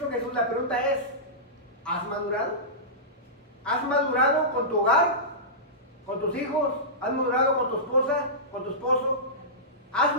Jesús, la pregunta es, ¿has madurado? ¿Has madurado con tu hogar? ¿Con tus hijos? ¿Has madurado con tu esposa? ¿Con tu esposo? ¿Has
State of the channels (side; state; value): both; normal; correlation -0.18